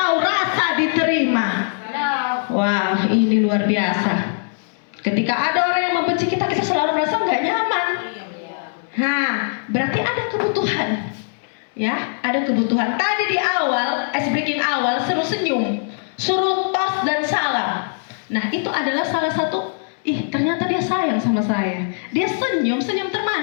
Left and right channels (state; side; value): silent; right; digital silence